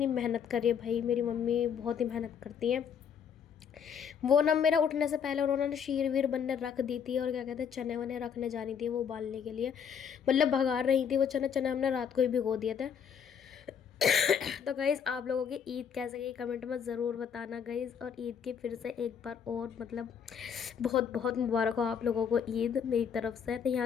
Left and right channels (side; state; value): right; quieter; 7.5 dB